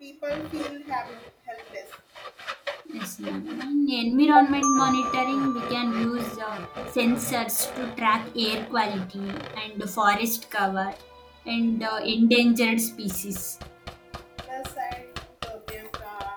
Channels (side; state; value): both; identical; correlation 1.00